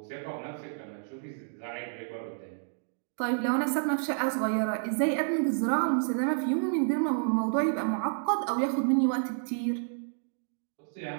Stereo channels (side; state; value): left; silent; digital silence